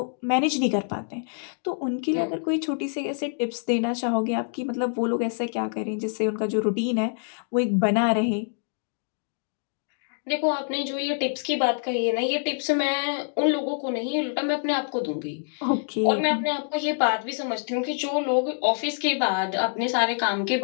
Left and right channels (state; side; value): silent; right; 61 dB below the other